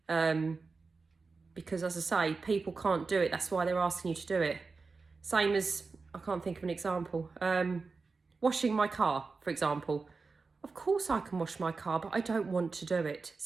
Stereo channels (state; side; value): quieter; left; 4.3 dB